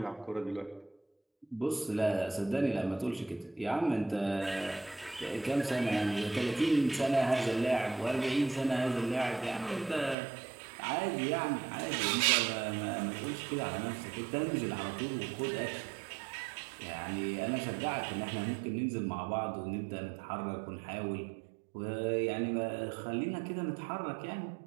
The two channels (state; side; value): drops out; left; at 10.2 s